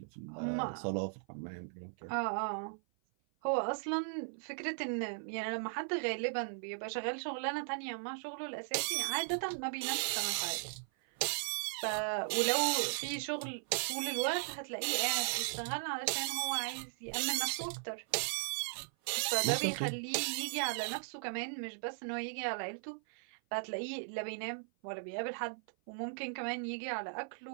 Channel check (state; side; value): silent; left; 53 dB below the other